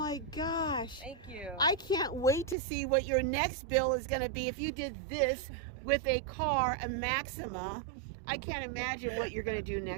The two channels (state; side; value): drops out; left; at 2.6 s